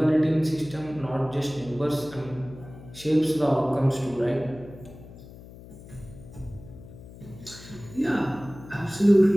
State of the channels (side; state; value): left; noise; hum, 17 dB below the sound